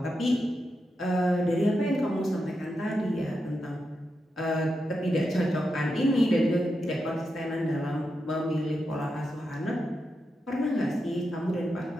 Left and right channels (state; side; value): normal; both; correlation 0.87